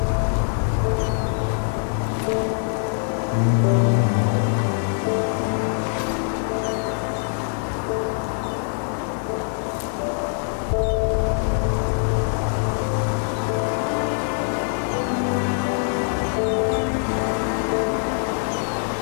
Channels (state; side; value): silent; right; 58 dB below the other